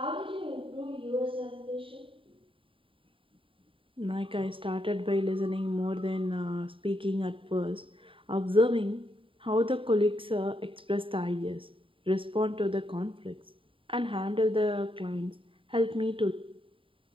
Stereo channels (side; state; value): left; late; 0.25 ms